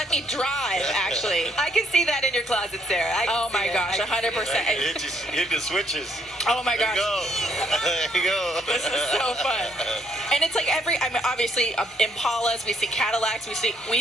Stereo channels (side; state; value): both; normal; correlation 0.70